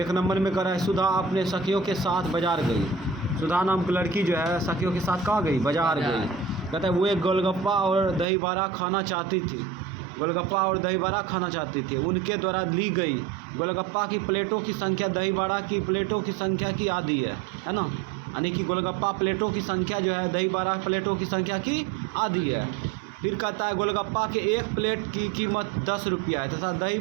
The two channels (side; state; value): left; drops out; at 8.2 s